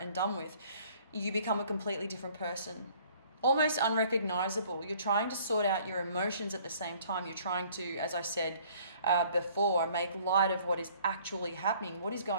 done with, you become a completely different person. Almost unrecognizable. You're trying to sort out your emotions at the same time. You're trying to, as I said before, make light of what is actually happening. What is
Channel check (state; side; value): inverted; both; correlation -0.57